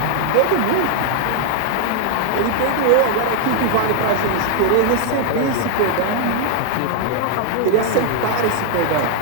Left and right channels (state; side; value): different; both; correlation 0.00